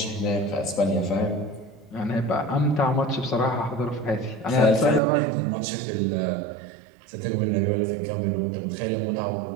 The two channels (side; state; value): left; drops out; at 5.0 s